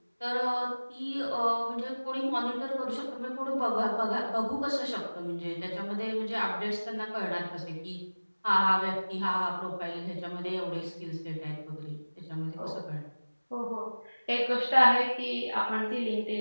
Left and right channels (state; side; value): inverted; both; correlation -1.00